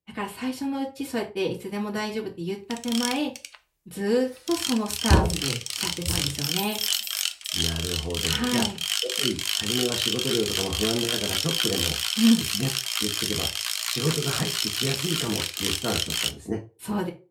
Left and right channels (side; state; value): both; identical; correlation 1.00